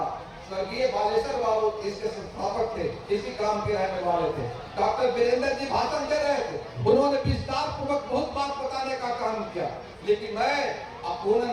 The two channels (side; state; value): both; identical; correlation 1.00